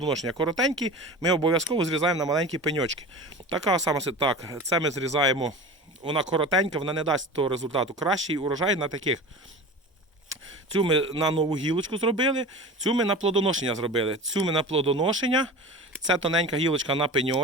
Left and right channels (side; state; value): both; normal; correlation 0.33